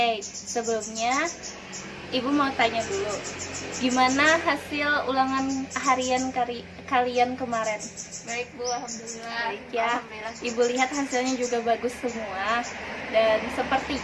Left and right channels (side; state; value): both; identical; correlation 1.00